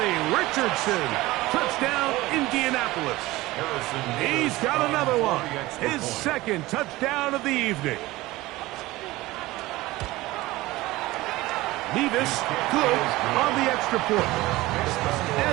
Richardson. Touchdown, Indianapolis. He's got another one. His 2nd touchdown of the evening. Nevis good on the extra point.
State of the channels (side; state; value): left; quieter; 18.9 dB